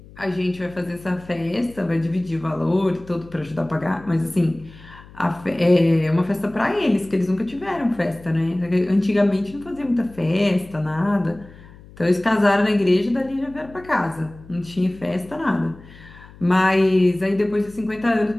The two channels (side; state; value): left; noise; hum, 21 dB below the sound